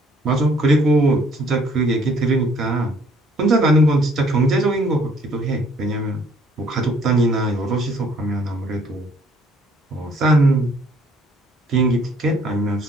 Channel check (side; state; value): both; normal; correlation 0.61